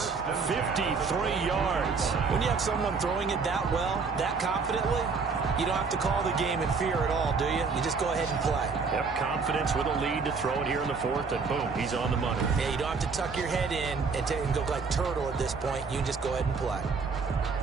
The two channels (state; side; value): quieter; left; 4.9 dB